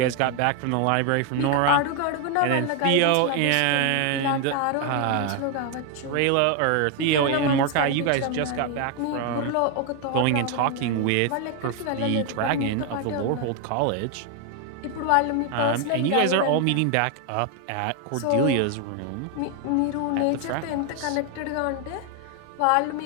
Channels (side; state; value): both; different; correlation 0.01